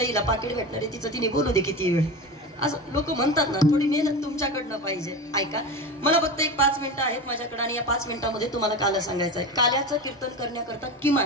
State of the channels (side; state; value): both; normal; correlation 0.26